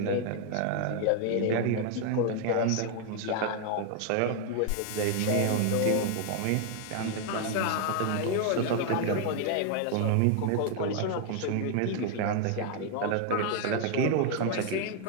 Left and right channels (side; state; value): both; different; correlation 0.00